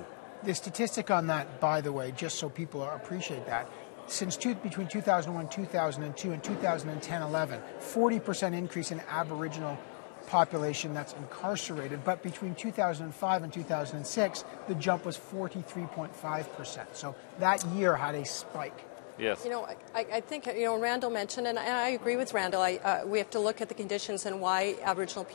The statistic on that, by the way, just so people appreciate that, between 2001, 2002, and 2010-11, 40% increase in Aboriginal population that's incarcerated. But between 2005 and 2006, the jump was 43.5%. So that year had a spike. Yes. I think, Randall mentioned, and I agree with Randall, we have to look at the conditions and why Aboriginal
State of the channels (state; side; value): silent; right; digital silence